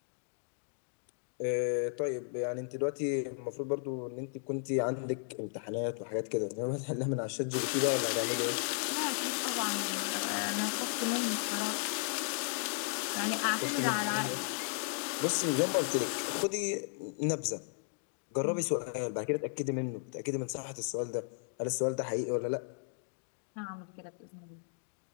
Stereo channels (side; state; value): right; silent; digital silence